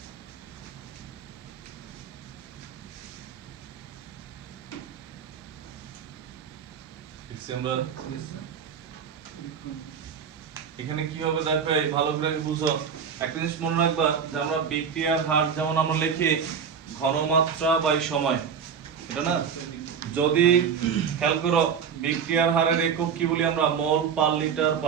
এখানে কি হবে দেখো, ভালো করে বুঝো। একটা জিনিস মনে রাখবা যে আমরা বিক্রিয়ার হার যেমন আমরা লিখি ঘনমাত্রা বাই সময়, এটা না? যদি খেয়াল করো বিক্রিয়ার হারের একক কি বলি আমরা? মোল পার লিটার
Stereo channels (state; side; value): quieter; left; 7.0 dB